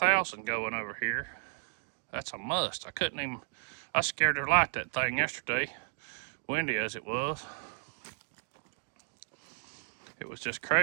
going over here. That's a must. I scared to light that thing yesterday, windy as it was. It was just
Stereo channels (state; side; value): silent; left; digital silence